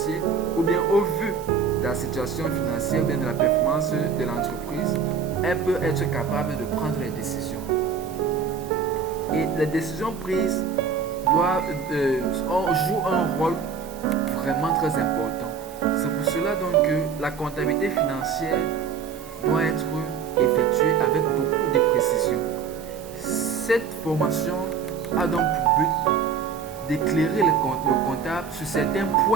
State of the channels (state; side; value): quieter; left; 6.1 dB